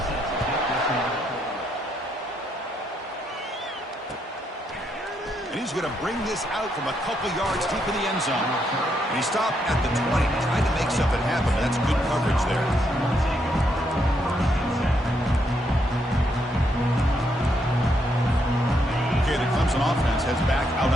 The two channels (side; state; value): both; normal; correlation 0.76